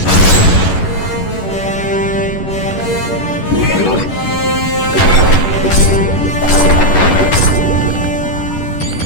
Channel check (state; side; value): late; right; 11 ms